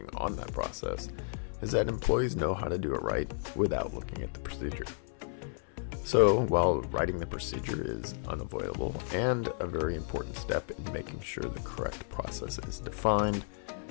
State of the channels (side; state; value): right; silent; 56 dB below the other